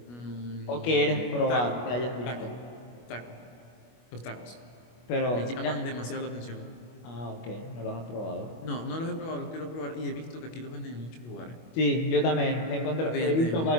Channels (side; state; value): right; late; 25 ms